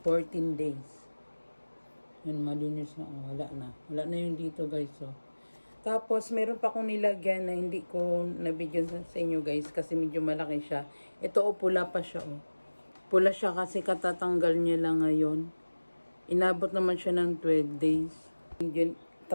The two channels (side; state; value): both; inverted; correlation -1.00